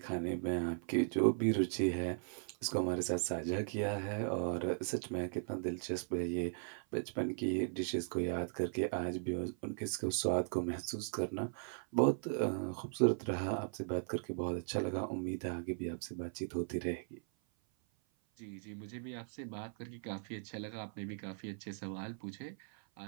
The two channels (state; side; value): silent; left; 52 dB below the other